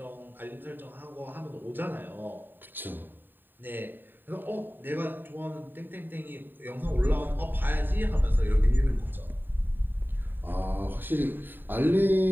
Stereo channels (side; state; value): left; late; 0.093 ms